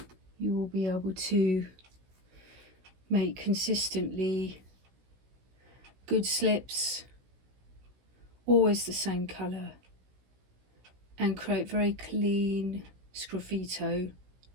you will be able to make consistently good slips, always the same colour, and create very clean sgraffito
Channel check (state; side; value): late; left; 16 ms